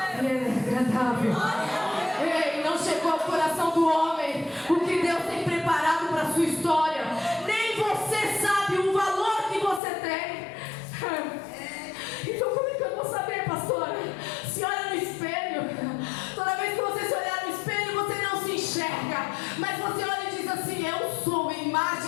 ela é agradável. Ei, não chegou ao coração do homem o que Deus tem preparado para a sua história. Nem você sabe o valor que você tem. Então como é que eu vou saber, pastora? Se olha no espelho, toda vez que você se olhar no espelho, você não se enxerga, mas você olha e diz assim, eu sou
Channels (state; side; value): drops out; right; at 9.8 s